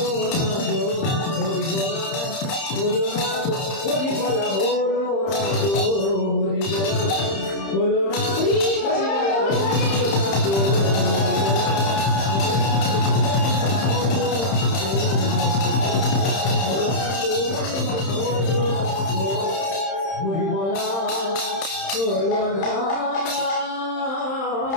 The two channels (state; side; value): late; right; 31 ms